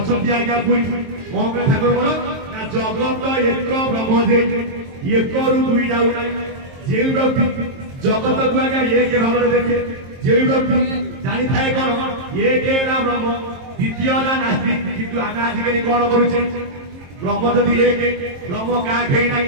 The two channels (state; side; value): late; left; 23 ms